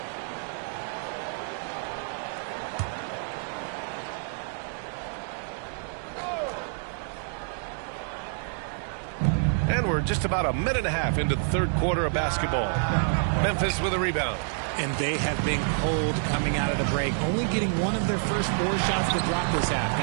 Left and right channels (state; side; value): silent; left; 58 dB below the other